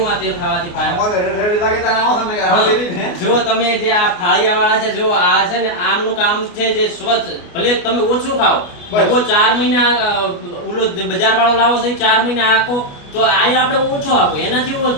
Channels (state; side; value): late; right; 29 ms